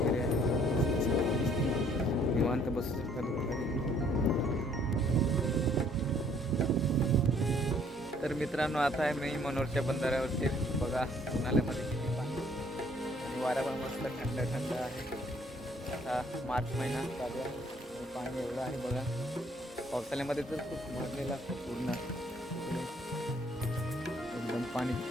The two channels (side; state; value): both; normal; correlation 0.62